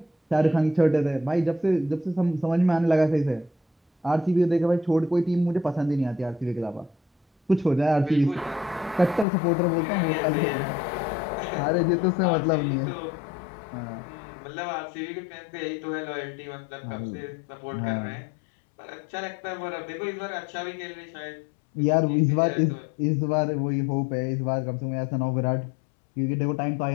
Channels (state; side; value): drops out; right; at 9.2 s